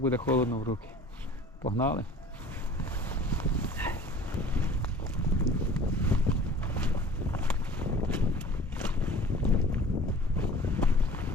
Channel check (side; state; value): both; normal; correlation 0.46